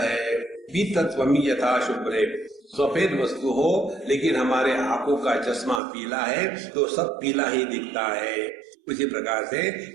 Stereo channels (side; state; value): left; drops out; at 5.8 s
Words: पीतत्वमि यथा शुभ्रे, सफेद वस्तु हो लेकिन हमारे आंखों का चश्मा पीला है तो सब पीला ही दिखता है। उसी प्रकार से